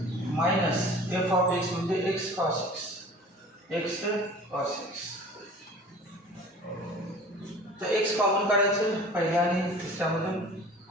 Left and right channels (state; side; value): normal; both; correlation 0.43